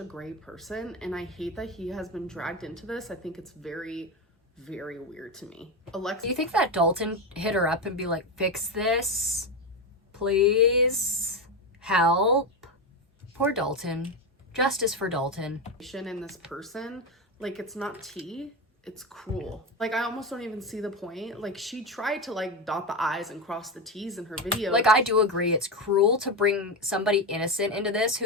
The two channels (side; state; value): both; normal; correlation 0.14